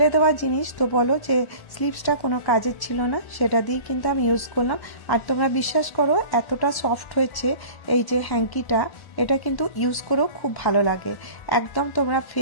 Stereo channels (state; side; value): late; right; 1.0 ms